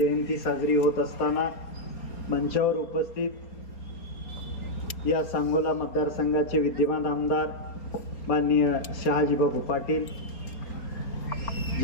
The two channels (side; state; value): right; late; 4.3 ms